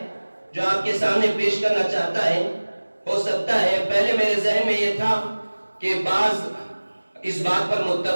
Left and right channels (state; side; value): inverted; both; correlation -1.00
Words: جو آپ کے سامنے پیش کرنا چاہتا ہے۔ ہو سکتا ہے پہلے میرے ذہن میں یہ تھا کہ بعض اس بات پر